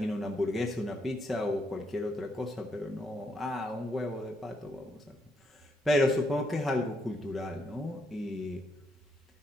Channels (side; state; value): both; normal; correlation 0.77